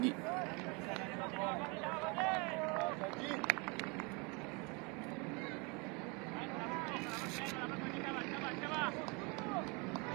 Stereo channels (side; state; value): left; quieter; 30.0 dB